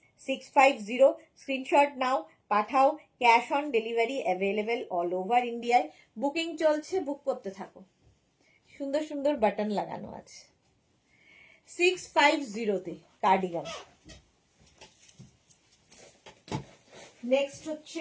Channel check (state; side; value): identical; both; correlation 1.00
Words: 650। স্ক্রিনশট নাও, পাঠাও, cash on delivery available all over ইন্ডিয়ায়। বুকিং চলছে, বুক করতে থাকো। সুন্দর সুন্দর বাটন লাগানো আছে। 650-তে কার্ডিগান। নেক্সট হচ্ছে